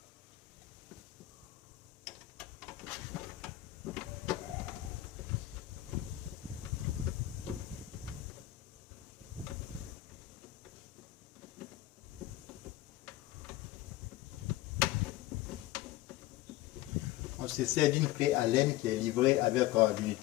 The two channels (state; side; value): quieter; right; 15.7 dB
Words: On se sert d'une clé Allen qui est livrée avec